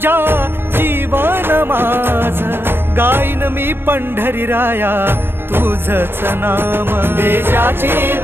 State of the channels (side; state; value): left; late; 0.11 ms